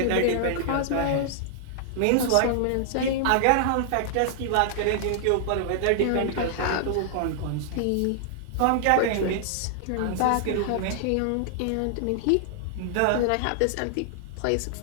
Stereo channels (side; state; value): both; different; correlation -0.01